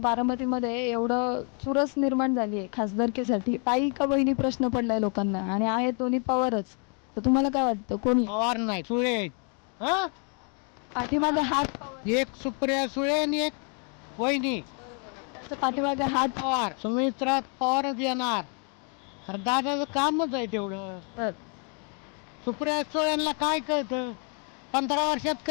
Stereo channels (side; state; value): right; quieter; 38.8 dB